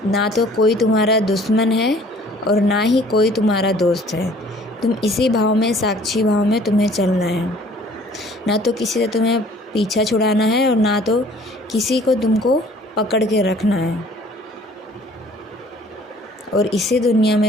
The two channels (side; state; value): both; normal; correlation 0.54